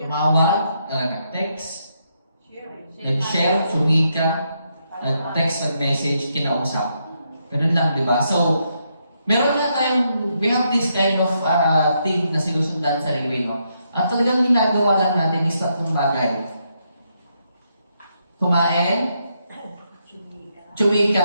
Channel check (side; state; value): both; inverted; correlation -0.78